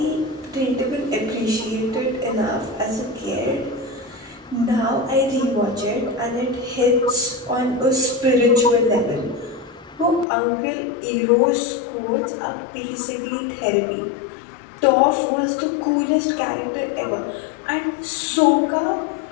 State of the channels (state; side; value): drops out; right; at 10.2 s